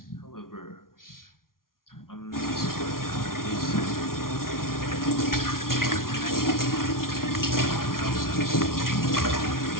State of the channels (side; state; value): right; late; 0.92 ms